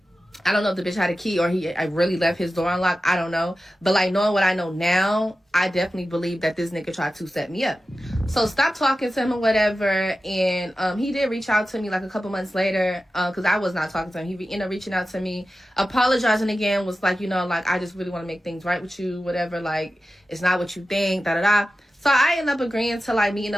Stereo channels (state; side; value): normal; both; correlation 0.94